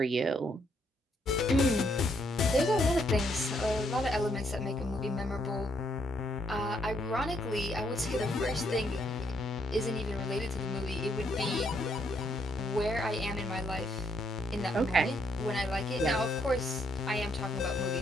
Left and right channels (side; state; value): both; normal; correlation 0.72